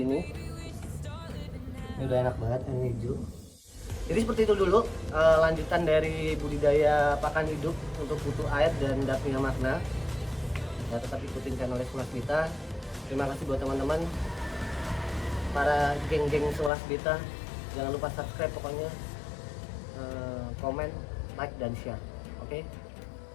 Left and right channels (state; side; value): drops out; right; at 16.7 s